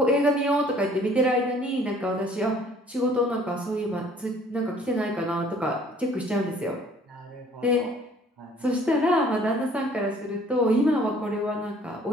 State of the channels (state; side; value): normal; both; correlation 0.56